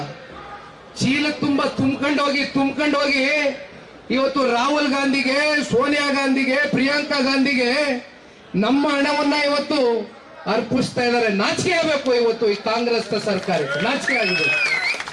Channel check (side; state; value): both; identical; correlation 1.00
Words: ಚೀಲ ತುಂಬಾ ತುಂಬ್ಕೊಂಡು ಹೋಗಿ ಇವತ್ತು ರಾಹುಲ್ ಗಾಂಧಿಗೆ, ಸೋನಿಯಾ ಗಾಂಧಿಗೆ, ಪ್ರಿಯಾಂಕಾ ಗಾಂಧಿಗೆ ನಮ್ಮ ಹಣವನ್ನ ಇವತ್ತು ಅರ್ಪಿಸ್ತಾ ಇದ್ದಾರೆ. ನಾಚಿಕೆ ಆಗಬೇಕು ಇವತ್ತು ಈ ಕಾಂಗ್ರೆಸ್ ಸರ್ಕಾರಕ್ಕೆ, ನಾಚಿಕೆ ಆಗಿದೆ.